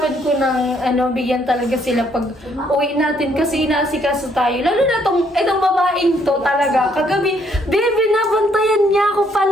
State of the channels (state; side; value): normal; both; correlation 0.69